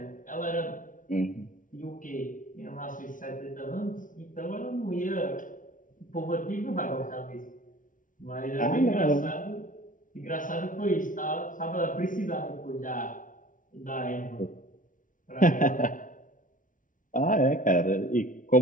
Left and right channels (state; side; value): late; right; 0.38 ms